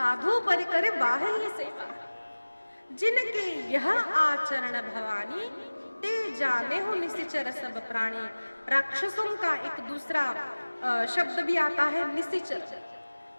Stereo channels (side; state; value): both; inverted; correlation -1.00